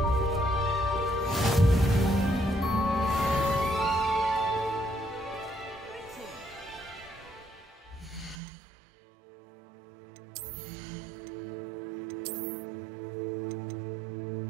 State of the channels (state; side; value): drops out; left; at 8.4 s